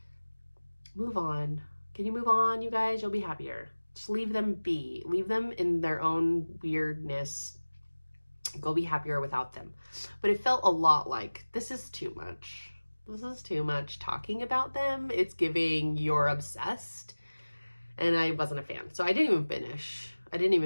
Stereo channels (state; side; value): inverted; both; correlation -1.00